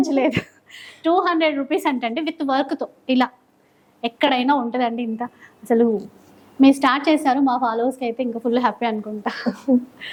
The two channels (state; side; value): identical; both; correlation 1.00